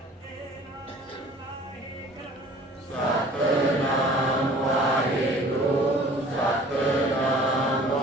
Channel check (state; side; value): normal; both; correlation 0.49